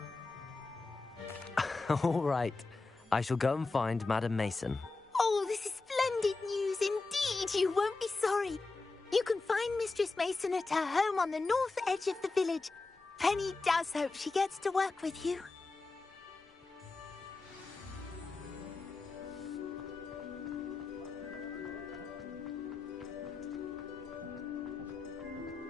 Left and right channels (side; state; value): right; quieter; 3.7 dB